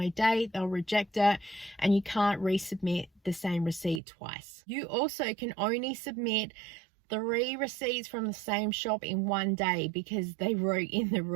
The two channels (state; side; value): drops out; left; at 4.0 s